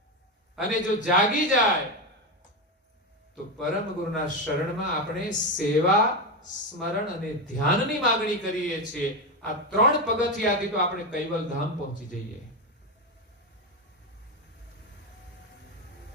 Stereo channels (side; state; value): both; normal; correlation 0.12